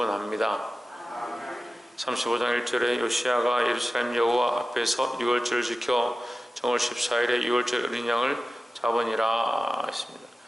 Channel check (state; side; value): normal; both; correlation 0.95